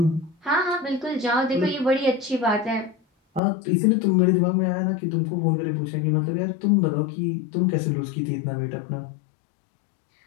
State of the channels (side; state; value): right; drops out; at 3.4 s